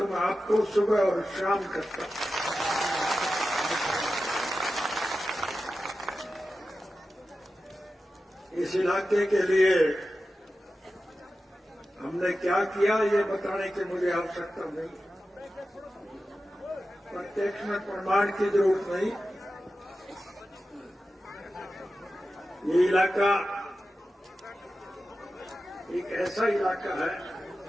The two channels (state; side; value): normal; both; correlation 0.93